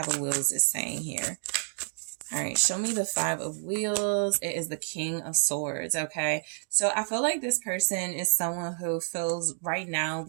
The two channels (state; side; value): silent; left; 58 dB below the other